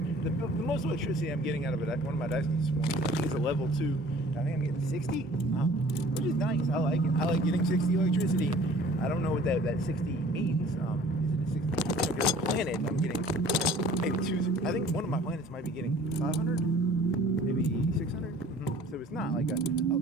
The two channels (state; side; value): normal; both; correlation 0.50